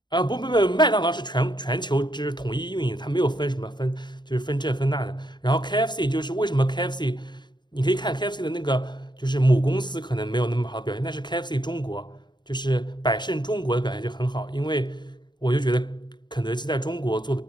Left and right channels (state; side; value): late; right; 0.21 ms